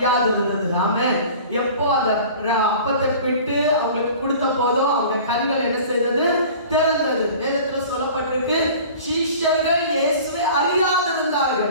இருந்தது. ஆமென். எப்போ அந்த அப்பத்தை பிட்டு அவங்களுக்கு கொடுத்த போதோ அவங்க கண்கள் என்ன செய்தது? திறந்தது. வேதத்துல சொல்லப்பட்டிருக்கு, சீஷர்கள் இயேசுவை அறியாது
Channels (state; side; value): inverted; both; correlation -0.42